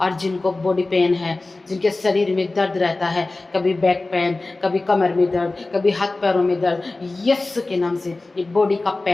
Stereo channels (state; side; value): quieter; right; 3.2 dB